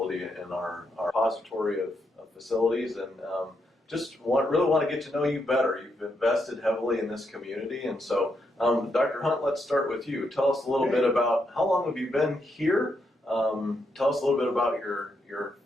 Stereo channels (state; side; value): normal; both; correlation 0.80